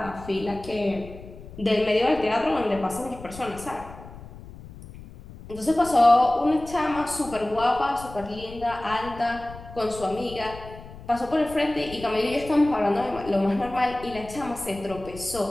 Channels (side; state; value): left; noise; rumble, 16 dB below the sound